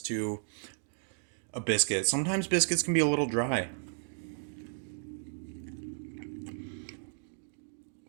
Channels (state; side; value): silent; left; digital silence